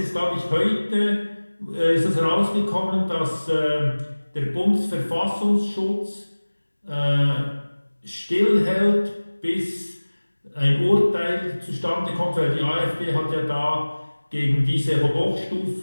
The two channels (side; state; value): both; inverted; correlation -1.00